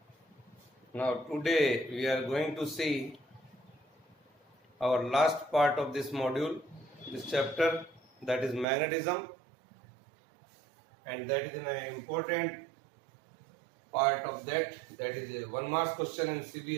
Now today we are going to see our last part of this module, this chapter, that is magnetism, and that is an important part of that. That is a 1 mark question in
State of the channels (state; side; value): drops out; left; at 8.7 s